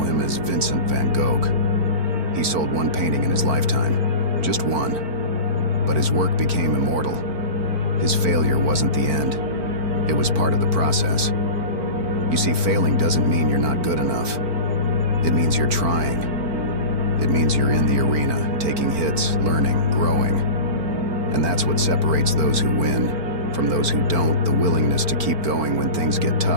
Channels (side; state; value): left; late; 4.5 ms